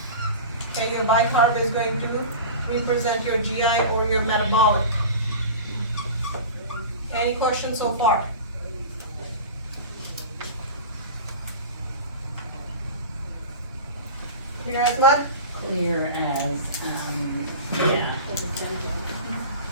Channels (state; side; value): inverted; both; correlation -0.33